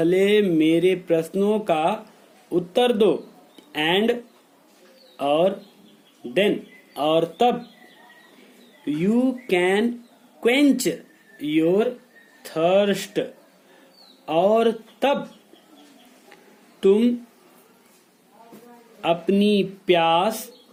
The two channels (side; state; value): both; identical; correlation 1.00